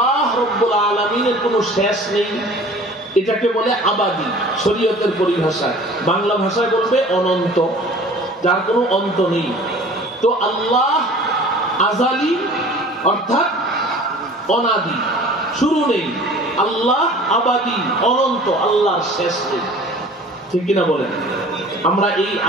রাব্বুল আলামিনের কোনো শেষ নেই, এটাকে বলে আবাদি শরীয়তের পরিভাষায়। বাংলা ভাষায় বলবে অনন্ত, যার কোনো অন্ত নেই। তো আল্লাহ আজালি অর্থাৎ অনাদি, শুরু নেই। আল্লাহ আবাদি, অনন্ত, আল্লাহর শেষ নেই। ঠিক কিনা বলেন? আমরা এই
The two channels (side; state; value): both; normal; correlation 0.46